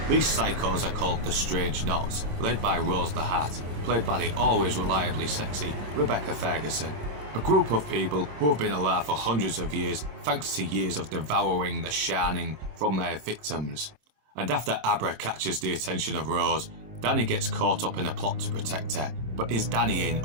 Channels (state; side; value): late; left; 26 ms